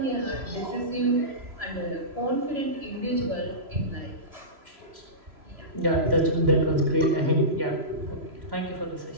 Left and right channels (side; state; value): left; late; 3.0 ms